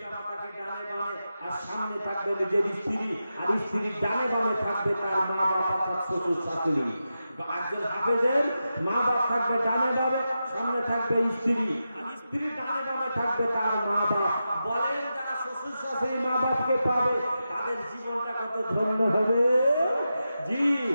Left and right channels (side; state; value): both; inverted; correlation -0.90